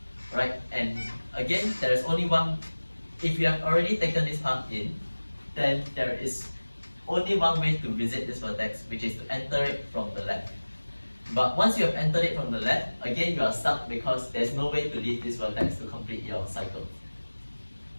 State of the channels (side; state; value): both; inverted; correlation -1.00